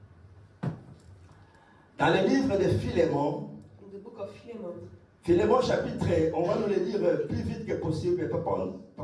dans le livre de Philémon. In the book of Philemon. Philémon chapitre, on va nous le dire plus vite que possible.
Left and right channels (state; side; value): identical; both; correlation 1.00